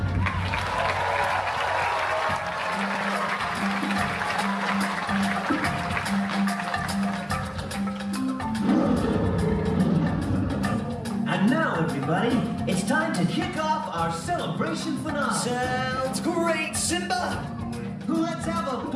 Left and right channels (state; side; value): identical; both; correlation 1.00